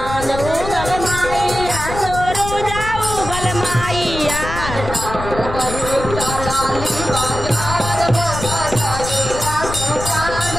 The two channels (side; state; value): left; noise; rumble, 8 dB below the sound